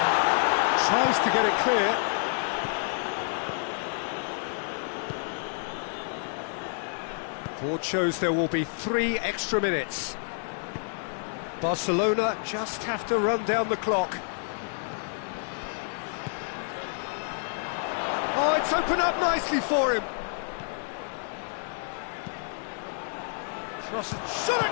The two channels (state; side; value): silent; right; 59 dB below the other